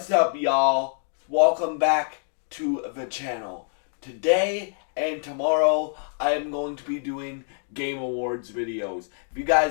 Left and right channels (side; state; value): right; silent; digital silence